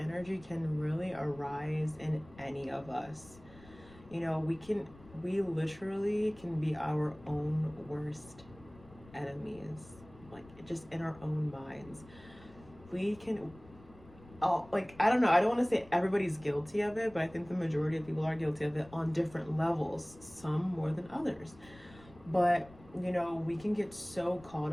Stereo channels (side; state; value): left; noise; rumble, 22 dB below the sound